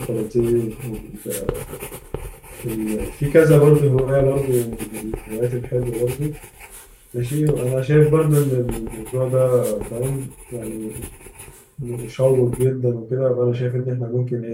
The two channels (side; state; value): both; identical; correlation 1.00